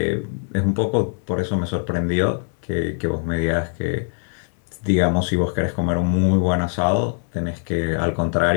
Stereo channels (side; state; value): right; silent; 64 dB below the other